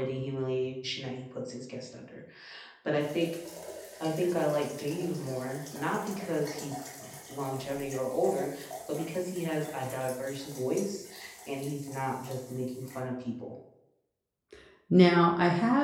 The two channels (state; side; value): identical; both; correlation 1.00